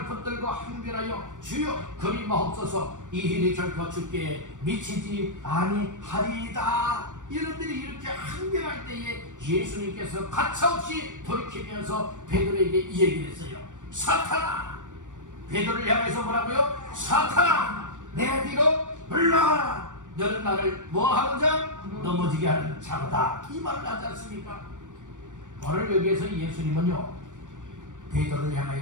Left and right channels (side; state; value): left; late; 0.87 ms